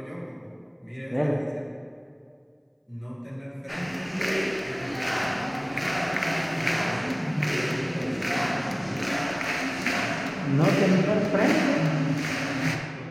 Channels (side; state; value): both; identical; correlation 1.00